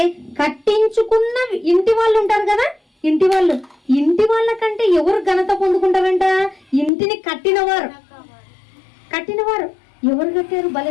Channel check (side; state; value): right; drops out; at 6.9 s